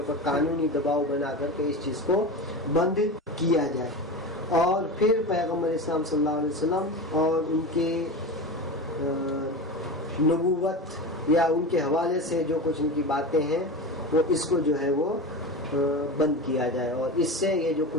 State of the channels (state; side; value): normal; both; correlation 0.26